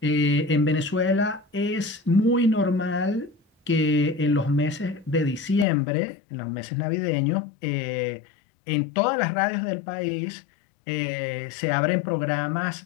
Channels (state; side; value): drops out; right; at 5.7 s